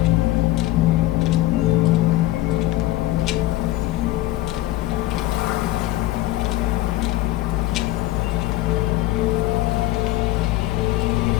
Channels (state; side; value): quieter; right; 16.4 dB